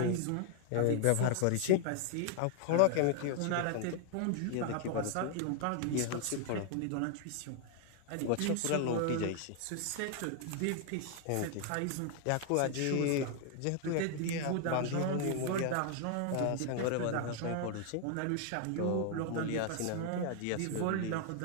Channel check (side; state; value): both; different; correlation 0.00